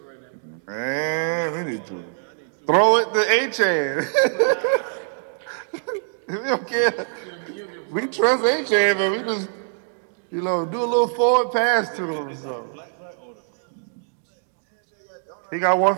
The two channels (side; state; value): left; silent; digital silence